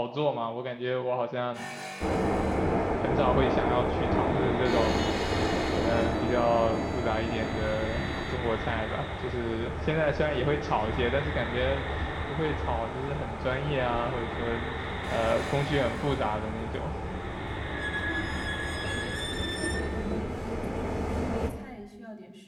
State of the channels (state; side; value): identical; both; correlation 1.00